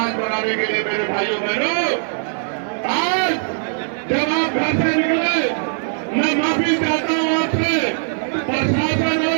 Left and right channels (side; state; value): left; silent; 63 dB below the other